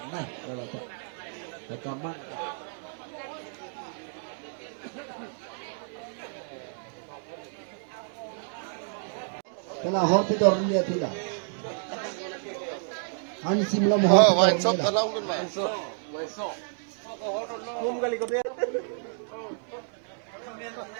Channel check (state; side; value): silent; left; digital silence